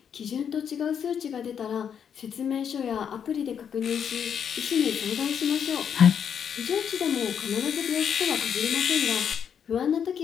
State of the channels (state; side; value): quieter; right; 7.9 dB